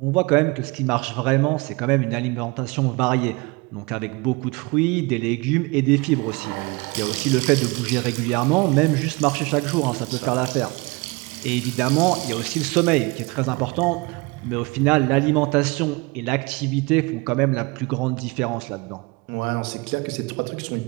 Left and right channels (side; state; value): left; quieter; 26.3 dB